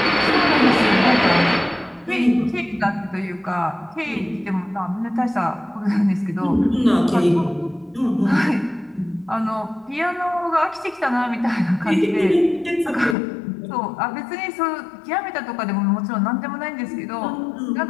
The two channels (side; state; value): right; drops out; at 13.2 s